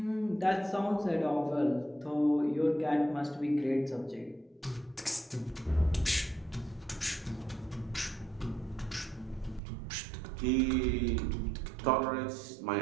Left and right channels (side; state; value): left; drops out; at 9.6 s